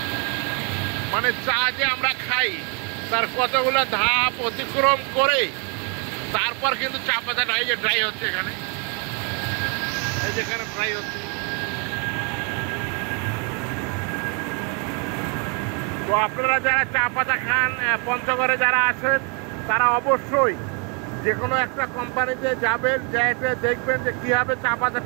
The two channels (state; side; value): quieter; left; 35.4 dB